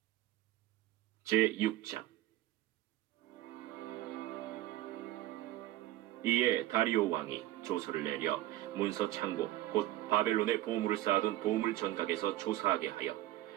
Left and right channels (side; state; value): left; quieter; 15.4 dB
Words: 제6장. 이에 다리오 왕이 조서를 내려 문서 창고 곧 바벨론의 보물을 쌓아둔 보물 전각에서 조사하게 하여